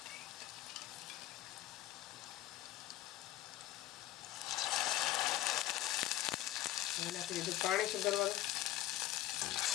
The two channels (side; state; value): right; quieter; 14.5 dB